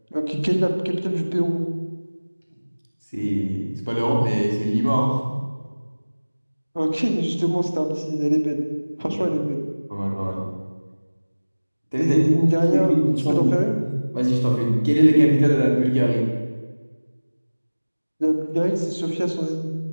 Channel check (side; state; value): both; inverted; correlation -1.00